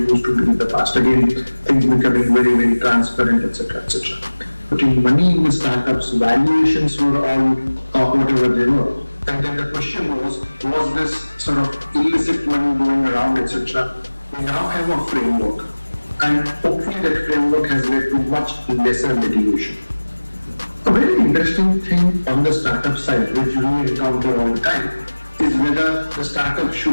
to be in the past. Again, things becoming very, very transparent, etc., etc. Putting money in the startups, valuations were all whatever they were. And then the question was this sort of illicit money going around, etc. We now have a framework, and hopefully that framework has led to much lesser litigation. A very interesting thing on the startup side, which we encounter all the time, is whether the startup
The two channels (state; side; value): inverted; both; correlation -1.00